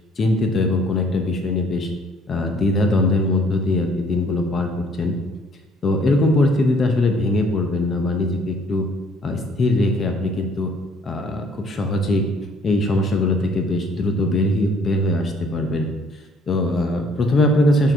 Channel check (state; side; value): normal; both; correlation 0.60